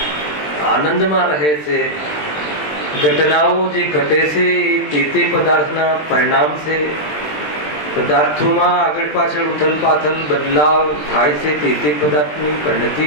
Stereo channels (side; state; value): right; late; 20 ms